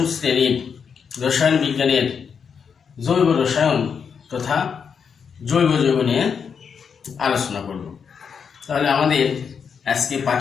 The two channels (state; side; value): quieter; right; 6.5 dB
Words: শ্রেণীর রসায়ন বিজ্ঞানের জৈব রসায়ন তথা জৈব যৌগ নিয়ে আলোচনা করব। তাহলে আমাদের আজকে